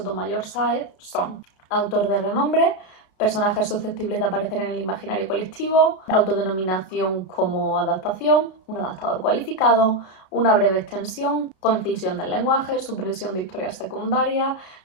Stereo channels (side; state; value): right; late; 33 ms